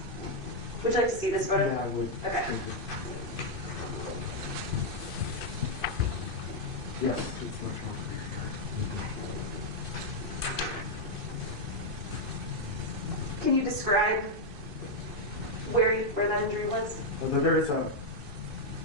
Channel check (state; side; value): late; left; 2.5 ms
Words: Would you like to see this photo? Yeah, I would. Okay. Thank you. Yes, it's much more clear here. Can you describe where that injury was? There is a,